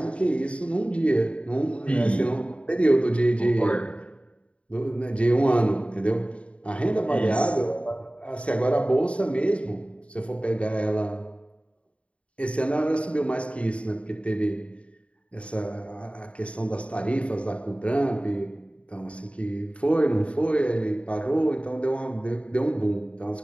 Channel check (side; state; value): right; late; 0.062 ms